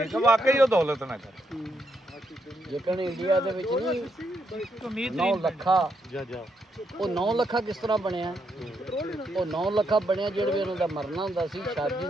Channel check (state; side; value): normal; both; correlation 0.79